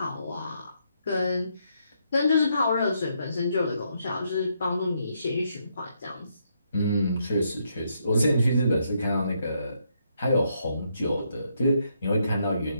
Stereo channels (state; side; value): inverted; both; correlation -0.76